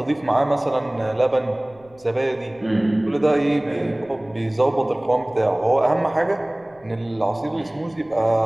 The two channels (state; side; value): noise; left; rumble, 29 dB below the sound